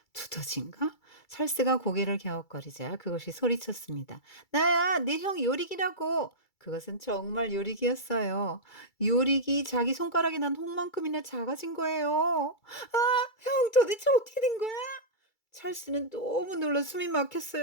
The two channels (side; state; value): right; late; 2.3 ms